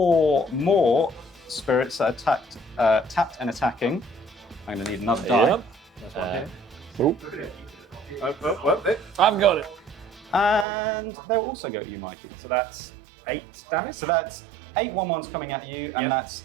more spirits that attacked, tapped and attacking. I'm going to need another die. Yep. There's one here. I've got it. And they'll also go at you, Mikey. So that's 8 damage. So that's 8 1/1s coming at you, and Yep. that's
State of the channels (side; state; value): left; drops out; at 10.7 s